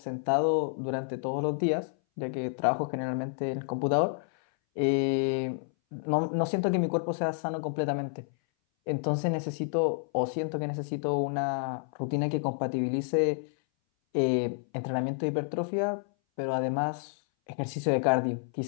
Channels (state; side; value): silent; right; 58 dB below the other